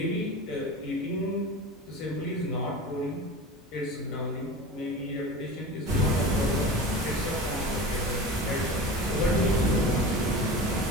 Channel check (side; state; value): both; normal; correlation 0.33